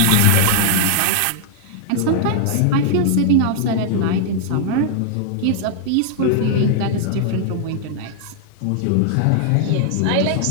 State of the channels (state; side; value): different; both; correlation -0.01